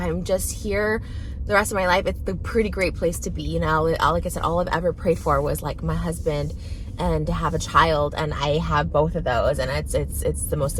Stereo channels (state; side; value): identical; both; correlation 1.00